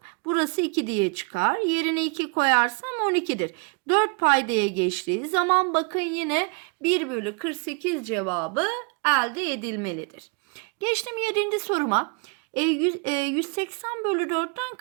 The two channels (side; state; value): left; quieter; 35.4 dB